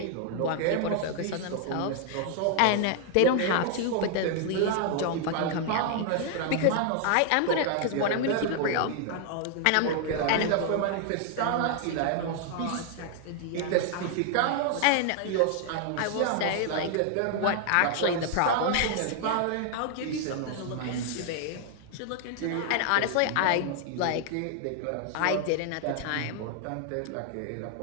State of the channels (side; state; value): both; different; correlation 0.00